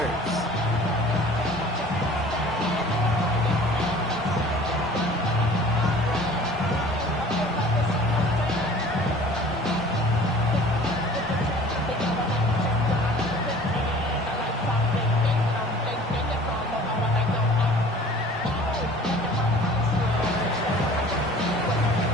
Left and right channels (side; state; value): both; normal; correlation 0.47